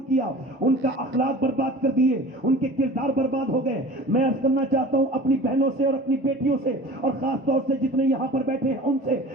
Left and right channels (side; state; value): both; normal; correlation 0.40